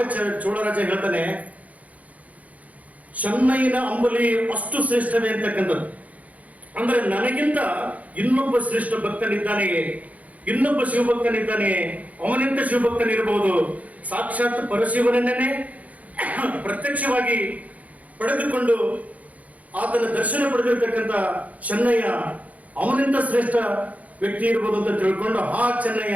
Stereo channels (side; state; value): left; late; 0.071 ms